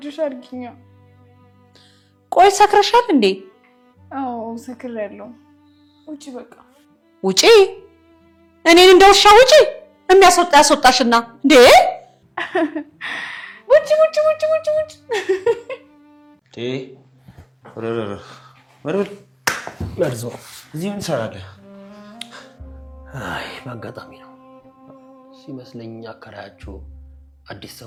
አድርጊኛ ቆይ ሰክረሻል እንዴ አዎ ሰክሬያለሁ ውጪ በቃ ውጪ እኔን እንደውሻ ውጪ የሚያስወጣ ያስወጣሽና እንዴ ውጪ ወረወረ ለርዞ እዚህ ምን ሰራለህ? አይ በአጋጣሚ ነው ሲመስለኝ አከራያችሁ አዲስ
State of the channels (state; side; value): identical; both; correlation 1.00